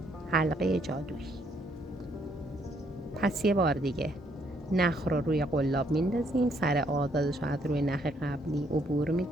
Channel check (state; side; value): normal; both; correlation 0.70